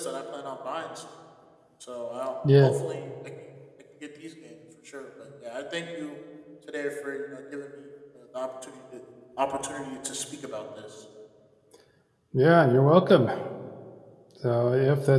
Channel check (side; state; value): both; identical; correlation 1.00